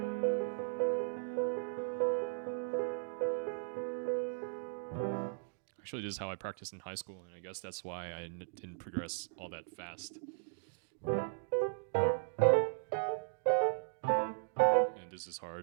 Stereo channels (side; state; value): left; silent; digital silence